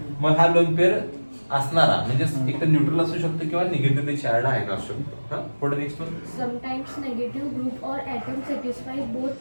मग हा लोन पेअर असणारा म्हणजे एक तर न्यूट्रल असू शकतो किंवा निगेटिव्हली चार्ज आयन असू शकतो. पुढे next one. Sometimes negative group or atom satisfy both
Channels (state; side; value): inverted; both; correlation -1.00